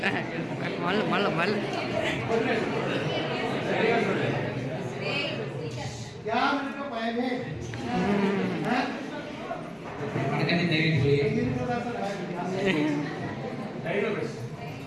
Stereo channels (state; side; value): identical; both; correlation 1.00